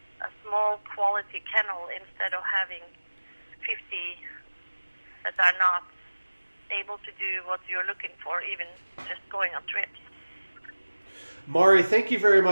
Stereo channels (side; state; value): both; inverted; correlation -1.00